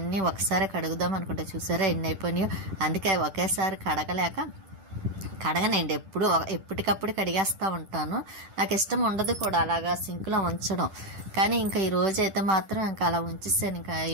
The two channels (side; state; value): left; late; 10 ms